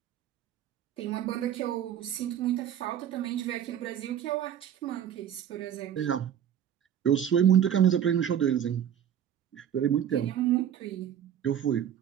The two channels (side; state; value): left; quieter; 9.8 dB